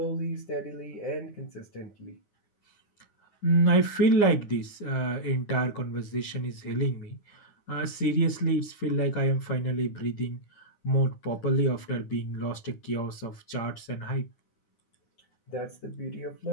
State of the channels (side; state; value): right; late; 9.8 ms